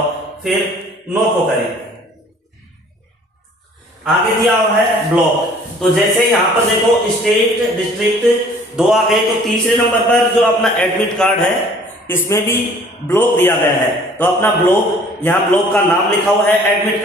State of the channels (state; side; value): normal; both; correlation 0.53